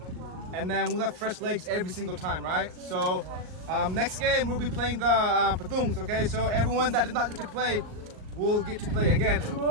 And then we'll have fresh legs every single time, right? So Next game we'll be playing the patungs. Okay, so everyone that did not get to play will get to play again.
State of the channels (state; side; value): late; left; 38 ms